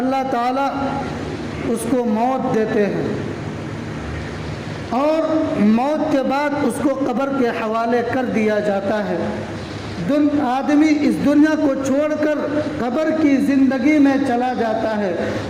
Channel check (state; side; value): identical; both; correlation 1.00